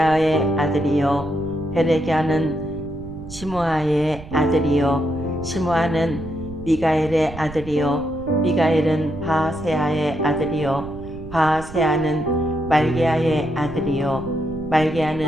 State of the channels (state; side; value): noise; right; rumble, 14 dB below the sound